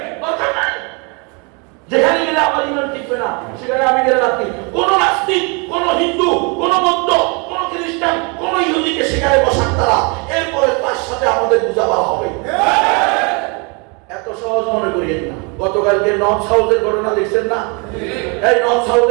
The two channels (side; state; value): left; quieter; 32.5 dB